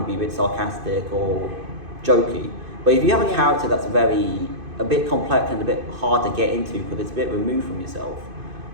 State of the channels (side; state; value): left; late; 2.5 ms